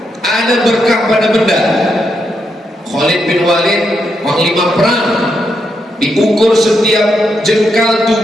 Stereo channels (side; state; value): both; normal; correlation 0.81